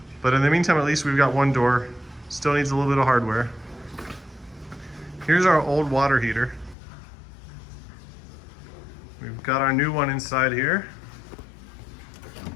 But in the meantime, at least we've got one door. Still needs a little bit of hardware. Here's our old water heater. We've got our new one inside here.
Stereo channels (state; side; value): drops out; right; at 6.8 s